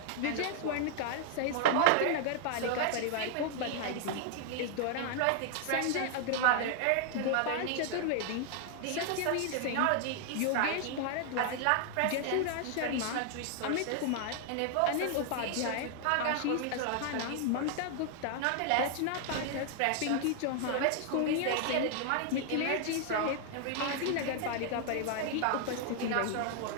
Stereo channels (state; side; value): different; both; correlation 0.00